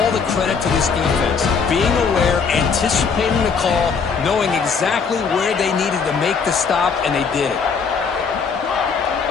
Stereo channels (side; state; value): right; quieter; 5.7 dB